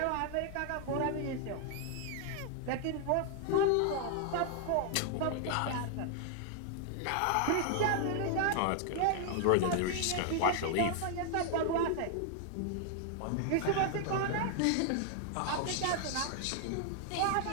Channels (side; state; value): both; different; correlation 0.00